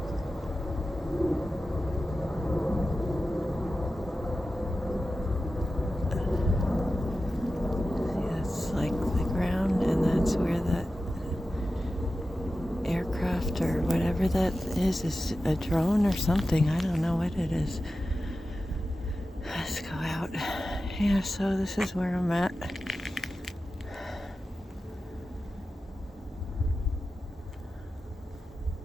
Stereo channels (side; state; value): both; normal; correlation 0.93